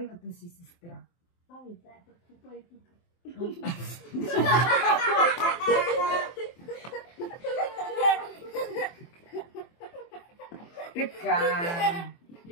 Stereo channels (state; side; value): late; right; 23 ms